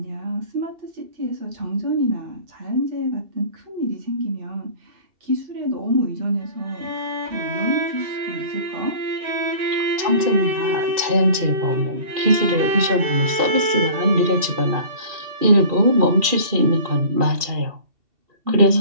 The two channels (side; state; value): left; late; 2.7 ms